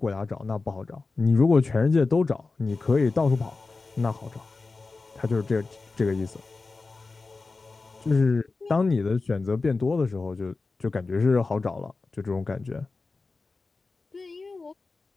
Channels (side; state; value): right; quieter; 3.9 dB